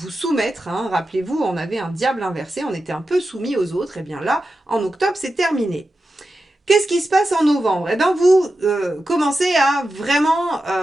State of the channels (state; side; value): normal; both; correlation 0.91